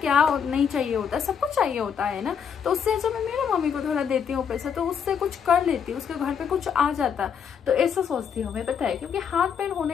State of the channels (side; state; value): right; quieter; 7.3 dB